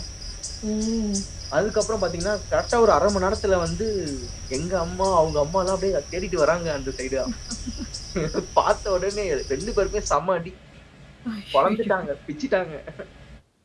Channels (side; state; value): both; identical; correlation 1.00